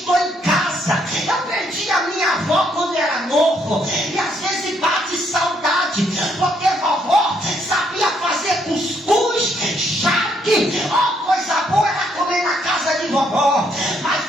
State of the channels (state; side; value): normal; both; correlation 0.71